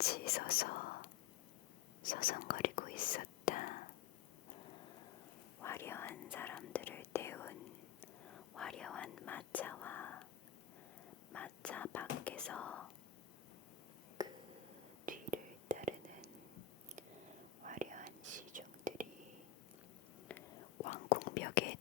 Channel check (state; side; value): quieter; right; 10.6 dB